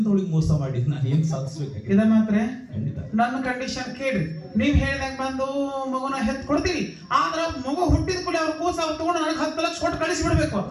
ಮೋಸ ಮಾಡಿ ನಾನು ಏನ್ ಸಾಧಿಸ್ಬೇಕು? ಇದ ಮಾತ್ರ ಖಂಡಿತ. ನನ್ನ ಕಂಡೀಷನ್ ಕೇಳ್ರಿ. ನೀವ್ ಹೇಳ್ದಂಗ ಬಂದು ಮಗುನ ಹೆತ್ ಕೊಡ್ತೀವಿ, ಆದ್ರ ಮಗು ಹುಟ್ಟಿದ ಕೂಡ ಅವ್ರ ಕೂಸ ಅವ್ರು ತಗೊಂಡು ನನಗೆ 10 ಲಕ್ಷ ಕೊಟ್ಟು ಕಳಿಸಿ ಬಿಡ್ಬೇಕು.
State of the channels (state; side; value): identical; both; correlation 1.00